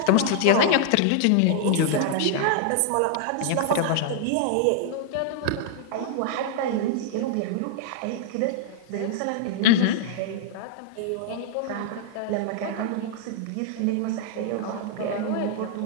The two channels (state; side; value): different; both; correlation -0.01